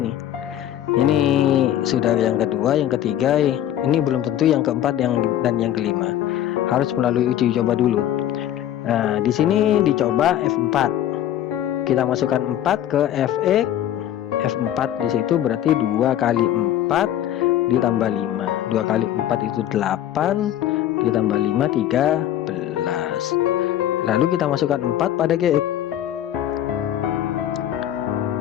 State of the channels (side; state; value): right; quieter; 11.8 dB